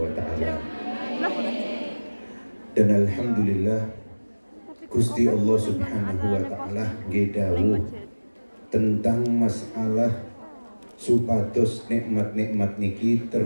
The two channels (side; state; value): both; inverted; correlation -1.00